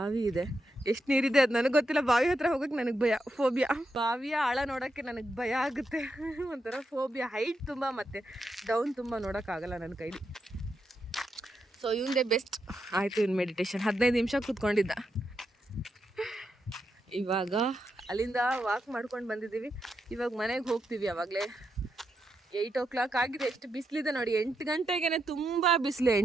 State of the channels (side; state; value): both; normal; correlation 0.84